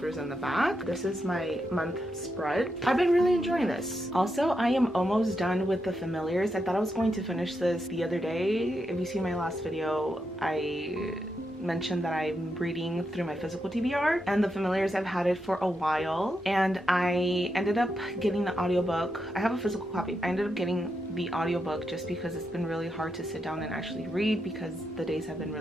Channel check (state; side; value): normal; both; correlation 0.84